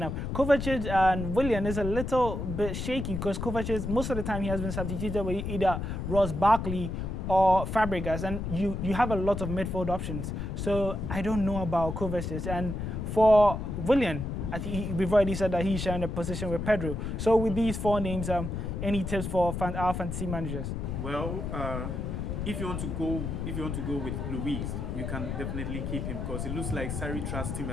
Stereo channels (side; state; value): left; noise; rumble, 4 dB below the sound